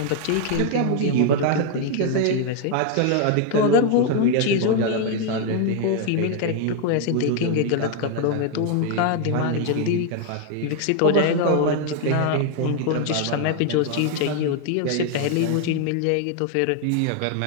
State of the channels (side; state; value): both; different; correlation 0.00